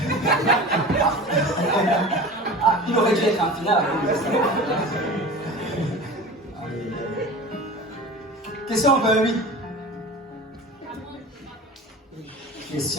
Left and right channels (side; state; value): both; normal; correlation 0.35